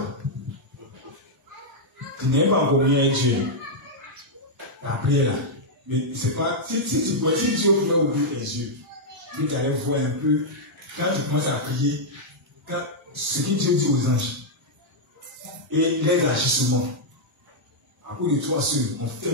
Tu n'es pas encore bien avec Dieu. Tu as prié là. Mais c'est pas, si Dieu pouvait ouvrir tes yeux, Dieu t'allait voir un peu, quand tu commences à prier, ce que Dieu dit aux anges, et les agissements, à cause de toi seul, on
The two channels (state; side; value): normal; both; correlation -0.05